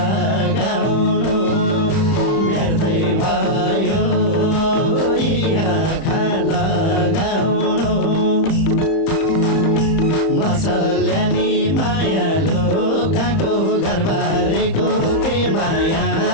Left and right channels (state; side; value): late; right; 31 ms